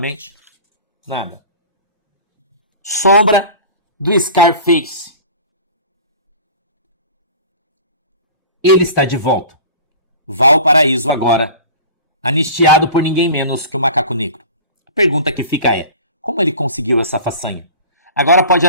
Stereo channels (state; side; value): inverted; both; correlation -0.40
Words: nada. Sombra do Scarface. Ele está de volta. Valparaíso agora, anistiado por ninguém menos que o Macaco Negro. A pergunta que fica é, como ele conseguiu essa façanha? Agora pode